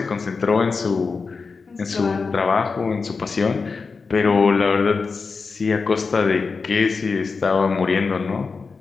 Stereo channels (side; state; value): right; quieter; 4.7 dB